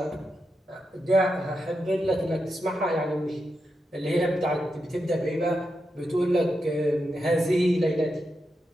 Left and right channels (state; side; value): normal; both; correlation 0.86